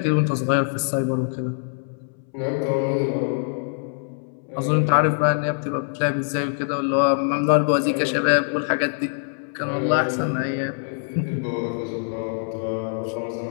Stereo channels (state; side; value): silent; right; 63 dB below the other